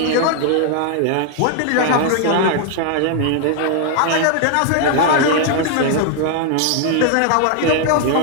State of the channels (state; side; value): different; both; correlation 0.00